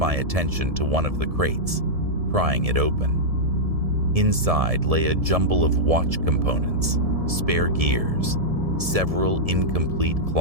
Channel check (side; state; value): left; late; 1.7 ms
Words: attention to one of the crates, prying it open. Inside lay a jumble of watch components, spare gears, several incomplete